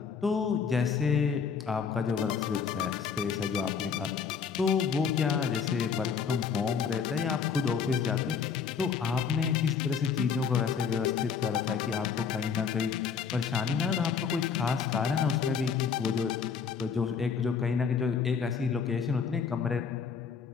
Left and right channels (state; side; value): quieter; right; 6.4 dB